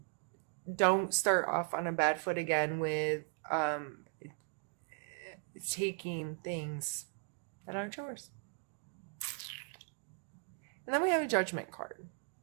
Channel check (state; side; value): quieter; left; 39.5 dB